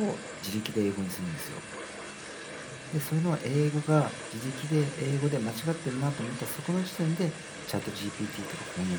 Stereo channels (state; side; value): identical; both; correlation 1.00